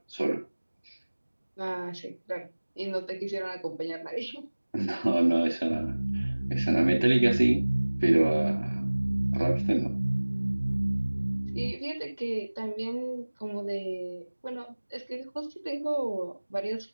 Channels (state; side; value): inverted; both; correlation -1.00